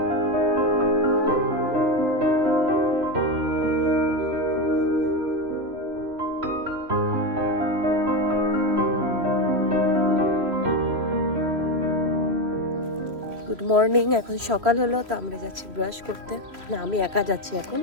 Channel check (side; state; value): left; late; 3.0 ms